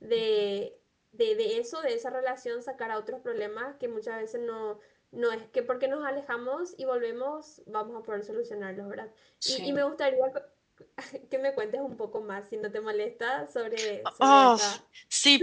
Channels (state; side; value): identical; both; correlation 1.00